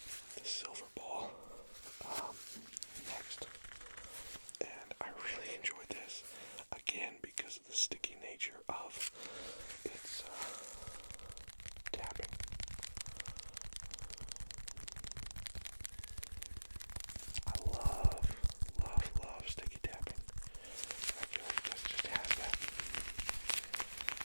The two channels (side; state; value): both; inverted; correlation -1.00